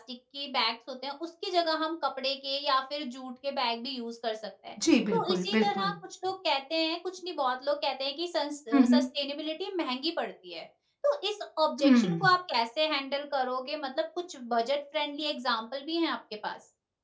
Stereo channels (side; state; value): both; identical; correlation 1.00